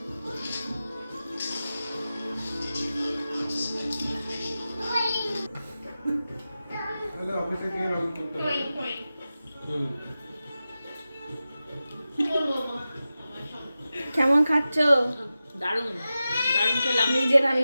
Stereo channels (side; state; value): both; inverted; correlation -0.94